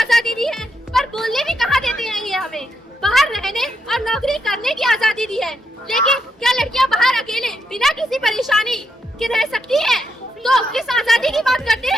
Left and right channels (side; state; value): both; normal; correlation 0.80